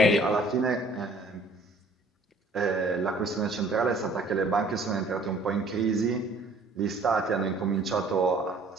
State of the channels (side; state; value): both; normal; correlation 0.56